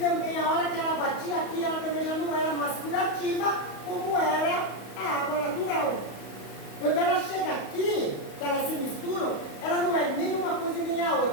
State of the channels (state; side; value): late; right; 35 ms